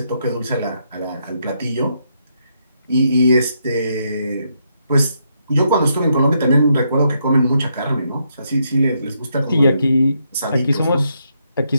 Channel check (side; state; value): both; inverted; correlation -0.78